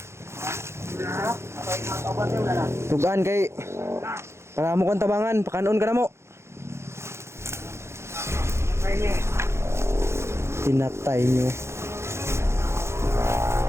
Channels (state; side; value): late; left; 0.13 ms